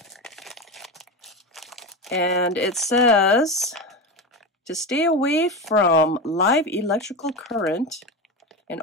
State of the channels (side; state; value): both; normal; correlation 0.20